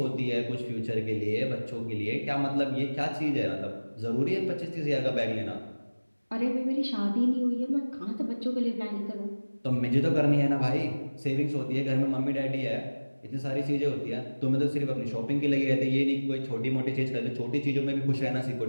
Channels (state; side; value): inverted; both; correlation -1.00